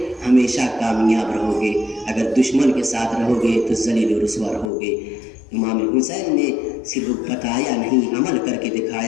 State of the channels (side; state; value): right; drops out; at 4.7 s